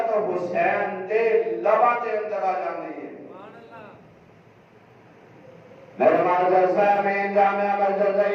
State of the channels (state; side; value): identical; both; correlation 1.00